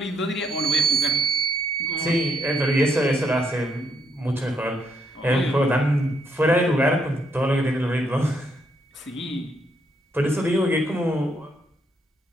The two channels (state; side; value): normal; both; correlation 0.74